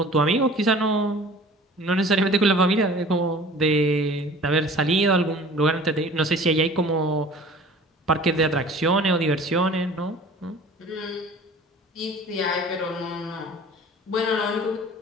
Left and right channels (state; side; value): normal; both; correlation 0.45